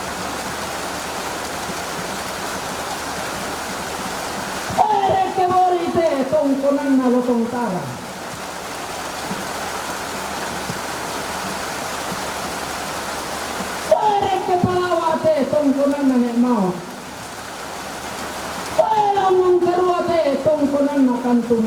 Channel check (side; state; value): both; identical; correlation 1.00